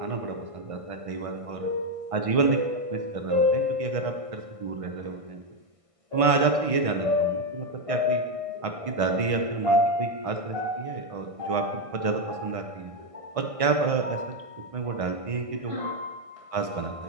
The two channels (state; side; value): late; left; 1.6 ms